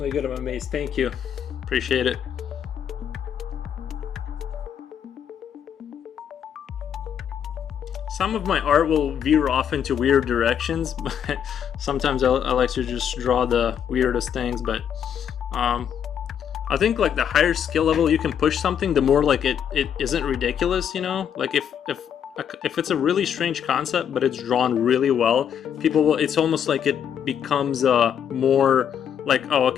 good. I'm amazed. Thank you. Appreciate it. Some of my art will veer off into weird directions, but sometimes I like to just draw the weirdest things. But I think like the higher skill level you can push something, the more like it isn't ridiculous, you know? Like if it's a really strange concept but it's drawn really well, people will, it's almost like it becomes more like, oh,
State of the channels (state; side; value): quieter; right; 8.6 dB